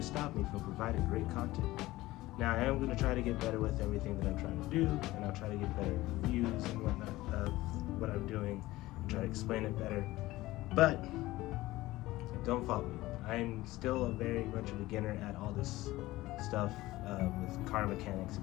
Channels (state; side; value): quieter; right; 17.9 dB